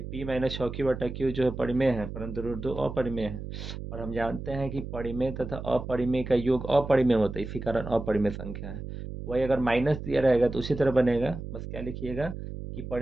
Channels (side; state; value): right; noise; hum, 8 dB below the sound